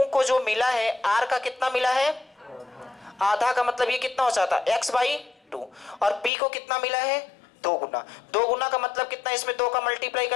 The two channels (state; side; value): drops out; right; at 6.3 s